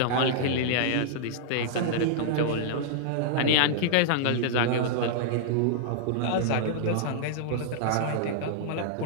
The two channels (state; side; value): different; both; correlation -0.02